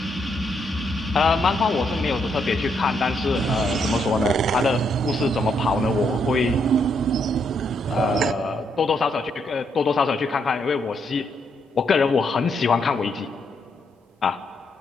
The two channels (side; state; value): both; normal; correlation 0.76